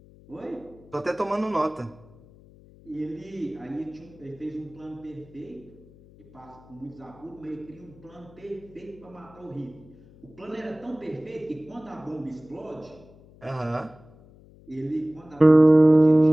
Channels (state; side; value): noise; left; hum, 24 dB below the sound